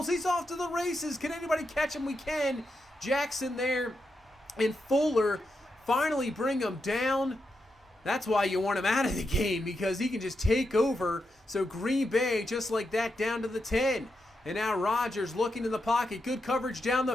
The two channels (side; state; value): both; normal; correlation 0.85